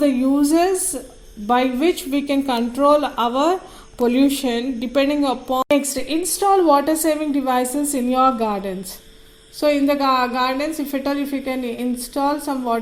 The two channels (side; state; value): both; identical; correlation 1.00